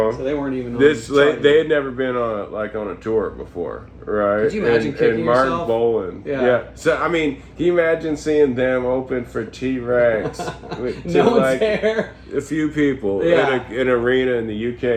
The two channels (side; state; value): both; identical; correlation 1.00